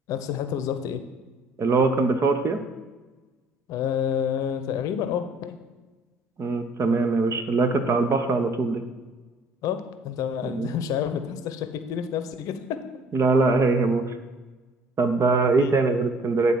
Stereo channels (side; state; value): both; normal; correlation 0.55